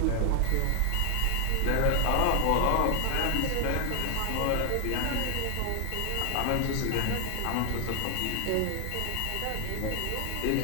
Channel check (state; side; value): different; both; correlation 0.00